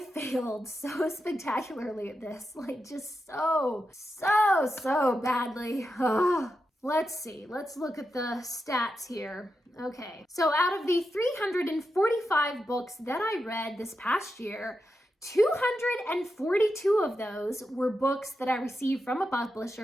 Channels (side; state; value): both; normal; correlation 0.88